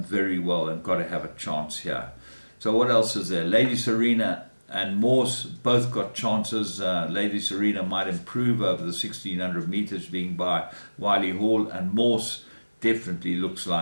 very well and got to have a chance here. So what else is there? Lady Serena and Morse both got chances. Lady Serena might improve over the 1600 meters being by Wiley Hall, and Morse definitely looks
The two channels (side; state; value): both; inverted; correlation -1.00